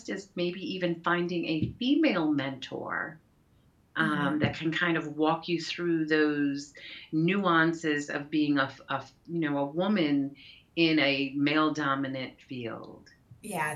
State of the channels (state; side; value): identical; both; correlation 1.00